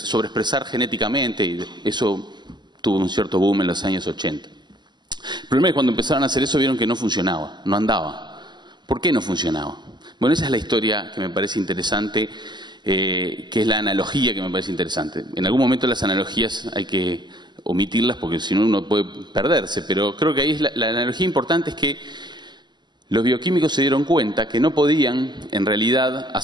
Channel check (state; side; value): late; left; 0.21 ms